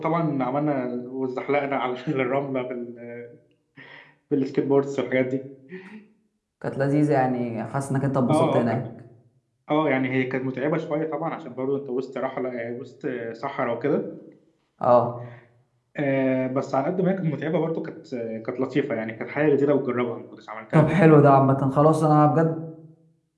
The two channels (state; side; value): identical; both; correlation 1.00